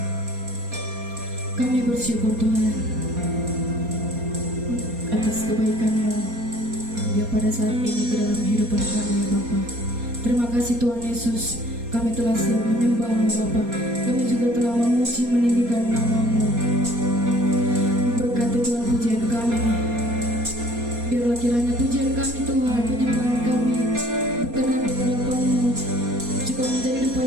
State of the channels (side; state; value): left; late; 4.2 ms